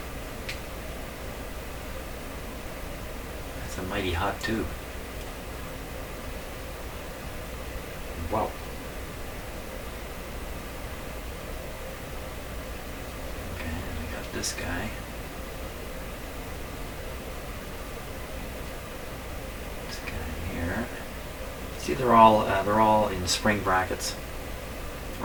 That's a mighty hot tube. Wow. Okay, we got this guy. This guy here. See, they're all in spring brackets.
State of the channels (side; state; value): both; identical; correlation 1.00